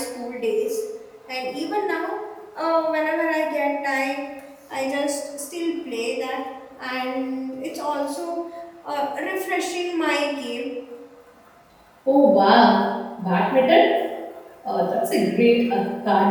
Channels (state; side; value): identical; both; correlation 1.00